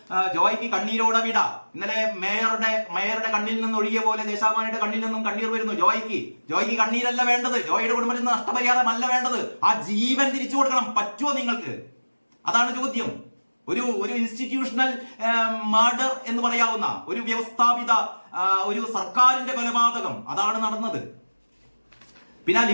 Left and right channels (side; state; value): both; inverted; correlation -1.00